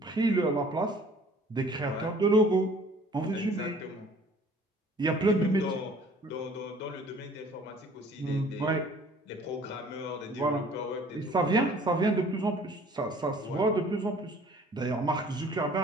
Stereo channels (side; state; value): both; normal; correlation 0.53